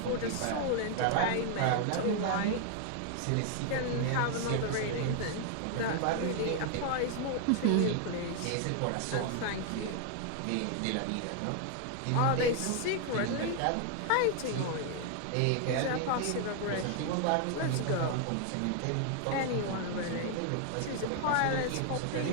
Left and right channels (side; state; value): both; different; correlation 0.00